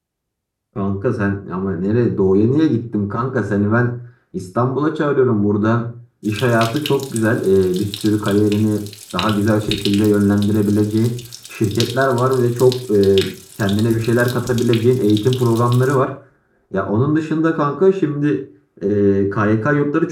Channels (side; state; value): both; identical; correlation 1.00